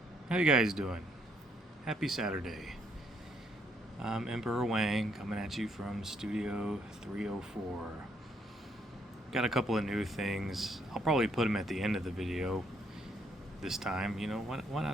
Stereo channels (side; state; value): both; normal; correlation 0.71